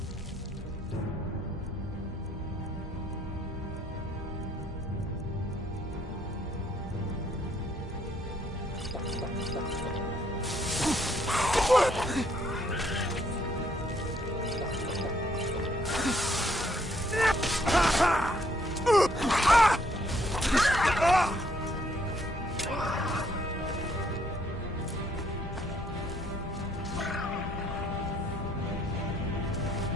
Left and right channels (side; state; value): both; normal; correlation 0.68